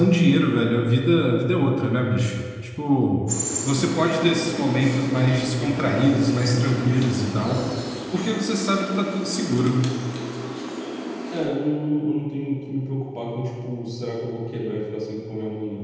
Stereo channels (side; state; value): both; identical; correlation 1.00